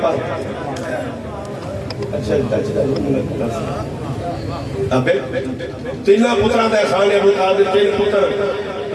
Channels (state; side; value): identical; both; correlation 1.00